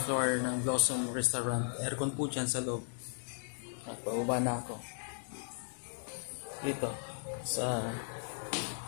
floor ng Blossom Restaurant. Aircon po dyan sa loob. At pababa na ako. Dito, sa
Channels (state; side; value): silent; right; digital silence